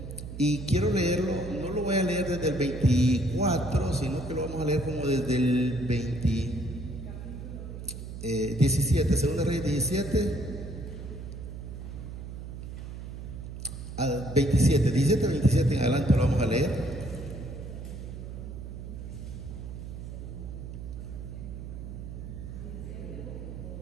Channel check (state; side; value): noise; right; hum, 9 dB below the sound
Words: Y quiero leerlo, no lo voy a leer desde el 24, sino que lo vamos a leer como desde el 17, Segunda Reyes 17 al 27, 17 al 27 en adelante lo vamos a leer.